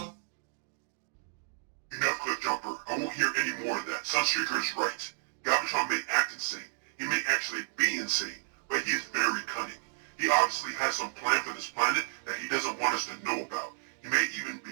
Enough, Cliffjumper. I won't hear any more of that. Sunstreaker is right. Galvatron may act insane. He may actually be insane, but he is very cunning. He obviously has some plan for this planet that he doesn't want us to know about. He may even be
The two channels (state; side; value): silent; left; digital silence